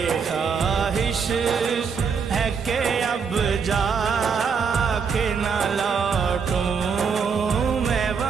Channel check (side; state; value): left; quieter; 6.0 dB